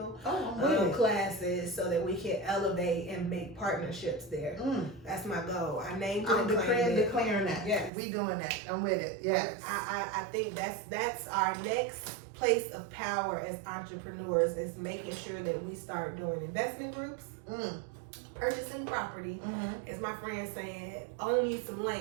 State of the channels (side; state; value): left; drops out; at 7.9 s